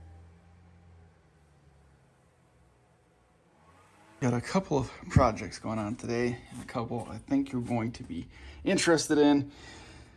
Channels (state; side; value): identical; both; correlation 1.00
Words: Got a couple of projects going on today, and a couple I think you're going to be interested in,